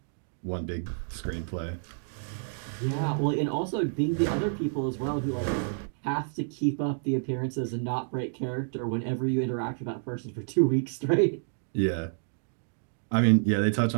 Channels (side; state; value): left; silent; digital silence